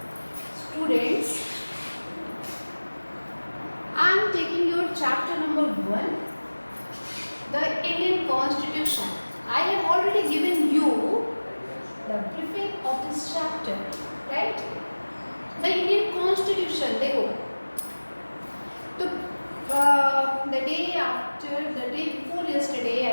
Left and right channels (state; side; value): inverted; both; correlation -1.00